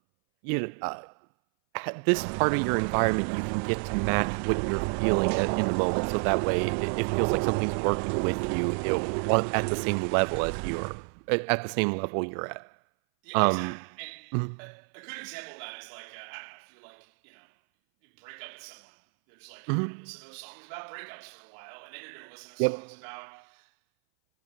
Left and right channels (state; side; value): silent; left; 59 dB below the other